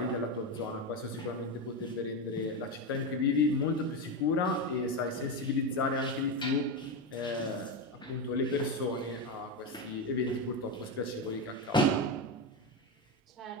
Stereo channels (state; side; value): normal; both; correlation 0.13